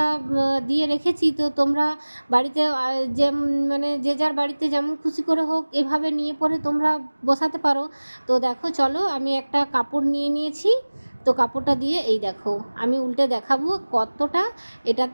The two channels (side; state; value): both; inverted; correlation -1.00